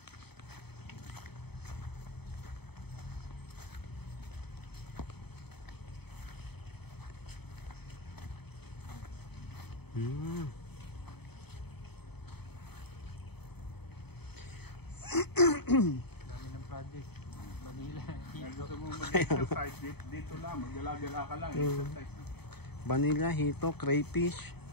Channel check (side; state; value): right; late; 0.97 ms